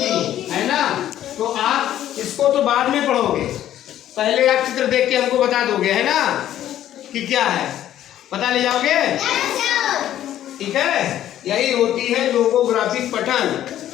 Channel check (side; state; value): right; quieter; 12.0 dB